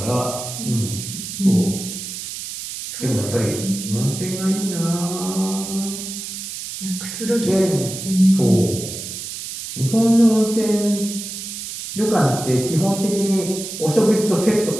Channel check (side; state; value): right; noise; hiss, 8 dB below the sound